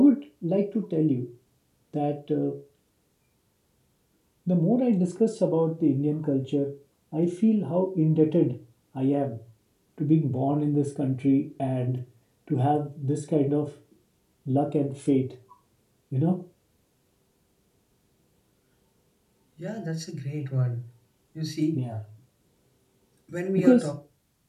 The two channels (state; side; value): identical; both; correlation 1.00